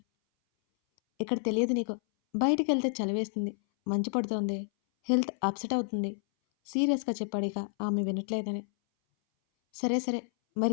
"ఇక్కడ తెలియదు నీకు. బయటికెళ్తే చలివేస్తుంది. మంచు పడుతోంది. హెల్త్ అప్సెట్ అవుతుంది." సీరియస్‌గా చెప్పాడిక ఆమె వినట్లేదని. "సరే సరే.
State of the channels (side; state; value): right; silent; 58 dB below the other